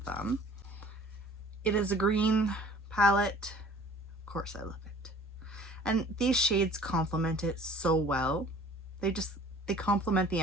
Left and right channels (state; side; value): normal; both; correlation 0.50